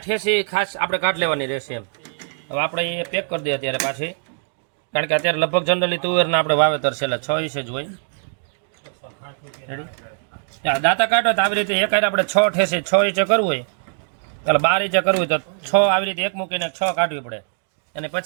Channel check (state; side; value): silent; left; digital silence